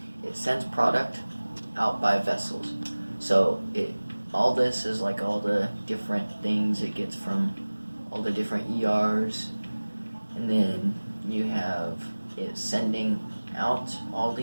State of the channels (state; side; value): inverted; both; correlation -1.00